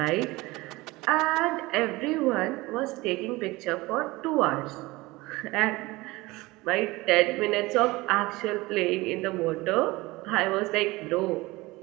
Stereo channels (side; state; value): left; quieter; 21.2 dB